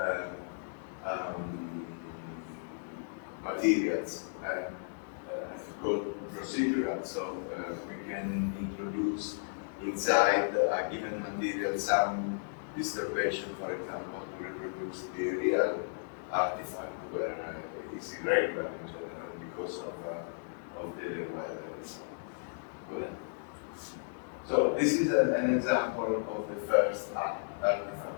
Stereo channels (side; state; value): right; silent; digital silence